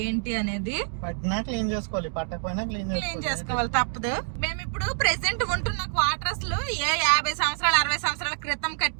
ఏంటి అనేది. పట్టినా క్లీన్ చేసుకోవాలి, పట్టకపోయినా క్లీన్ చేసుకోవాలి, తప్పదు. మేము ఇప్పుడు ప్రెసెంట్ ఉంటున్న క్వార్టర్స్ లో 50 సంవత్సరాలు 60 సంవత్సరాల క్రితం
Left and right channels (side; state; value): left; silent; 60 dB below the other